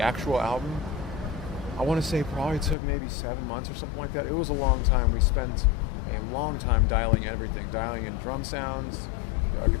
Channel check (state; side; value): drops out; right; at 2.8 s